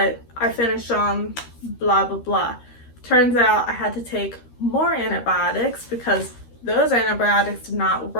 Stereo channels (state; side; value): late; right; 13 ms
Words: I finished on blah, blah, blah. Turns out I had to take more antibiotics because those antibiotics did not